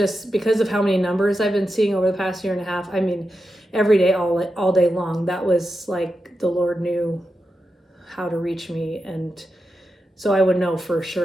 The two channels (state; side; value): normal; both; correlation 0.89